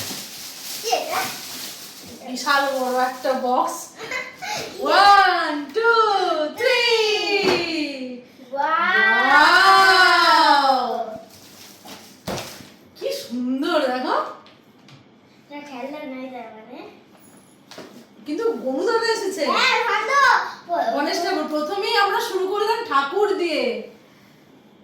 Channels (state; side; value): identical; both; correlation 1.00